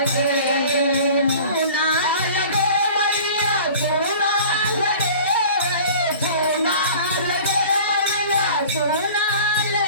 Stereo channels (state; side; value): inverted; both; correlation -0.43